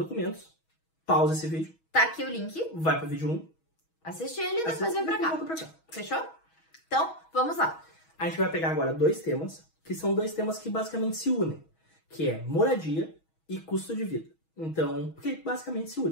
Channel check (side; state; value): right; late; 6.2 ms